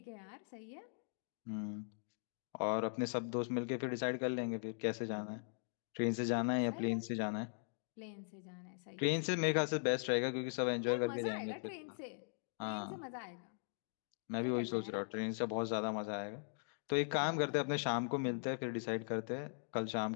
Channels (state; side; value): silent; right; digital silence